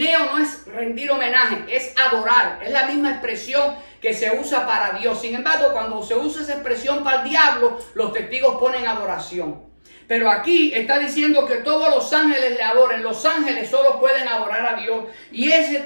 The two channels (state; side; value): inverted; both; correlation -1.00